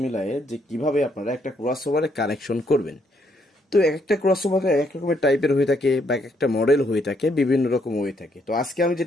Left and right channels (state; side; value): normal; both; correlation 0.73